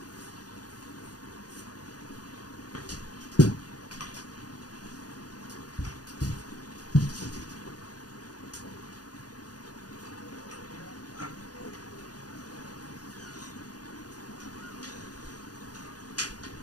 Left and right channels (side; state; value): right; late; 0.68 ms